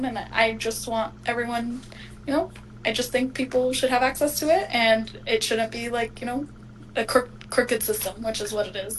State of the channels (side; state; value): both; identical; correlation 1.00